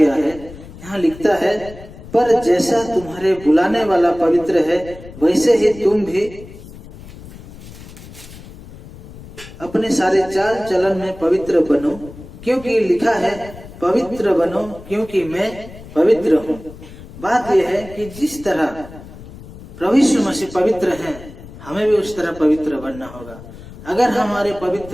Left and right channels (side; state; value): left; noise; rumble, 17 dB below the sound